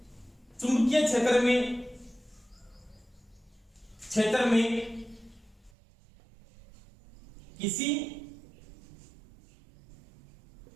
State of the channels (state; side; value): drops out; left; at 5.7 s